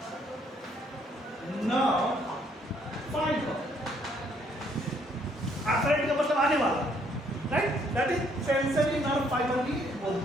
नर्व फाइबर। एफरेंट का मतलब आने वाला, right, that is sensory nerve fibre भी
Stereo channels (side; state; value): both; normal; correlation 0.67